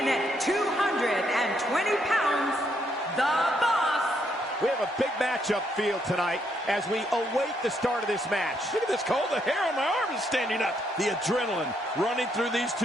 at 220 pounds, the Boss. We have a big matchup field tonight as we await the start of this match. Look at this, Cole. The hair on my arm is standing up. The adrenaline running through these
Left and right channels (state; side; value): normal; both; correlation 0.74